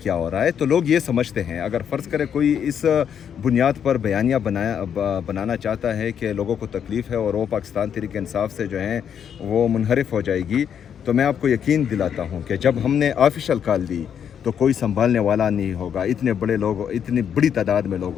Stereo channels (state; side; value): quieter; right; 8.3 dB